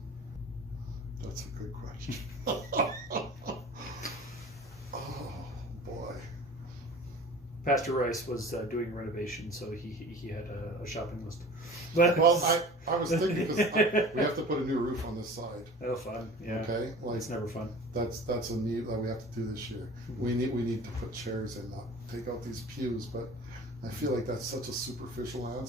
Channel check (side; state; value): both; normal; correlation 0.41